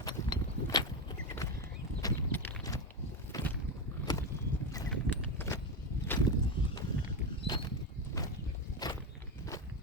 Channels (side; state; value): both; normal; correlation 0.14